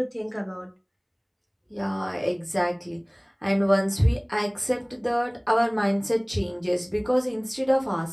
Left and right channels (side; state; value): both; identical; correlation 1.00